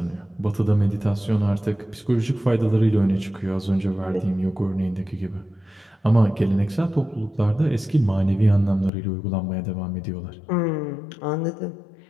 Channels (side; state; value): right; drops out; at 8.9 s